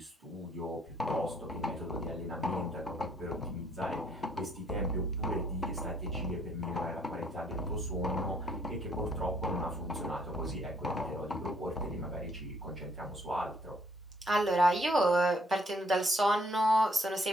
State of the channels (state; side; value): normal; both; correlation 0.66